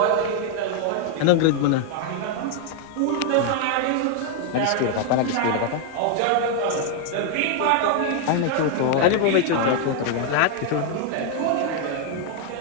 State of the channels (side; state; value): both; different; correlation 0.00